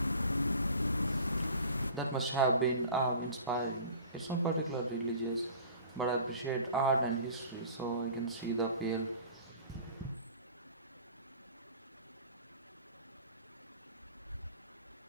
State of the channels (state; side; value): inverted; both; correlation -0.43